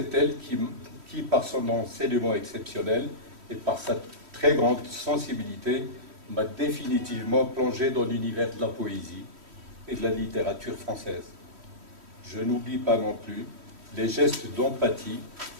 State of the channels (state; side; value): late; left; 3.1 ms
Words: elle qui, par son enseignement exceptionnel et par sa très grande sensibilité, m'a définitivement plongé dans l'univers de la poésie et de la littérature française. Je n'oublie pas non plus les gestes d'empathie